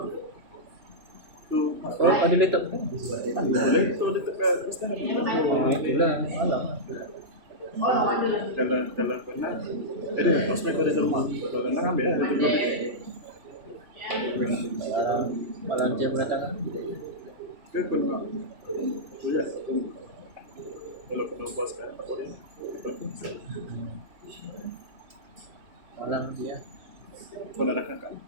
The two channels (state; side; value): late; left; 3.0 ms